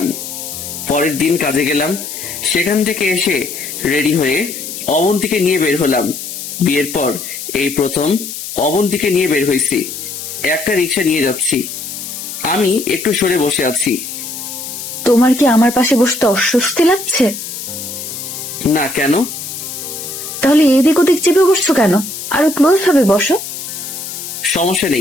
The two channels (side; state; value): left; noise; hiss, 8 dB below the sound